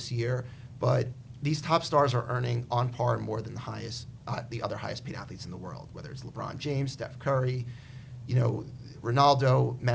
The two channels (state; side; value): identical; both; correlation 1.00